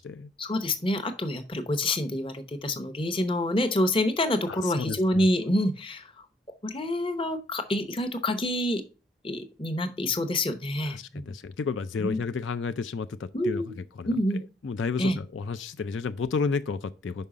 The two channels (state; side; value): normal; both; correlation 0.67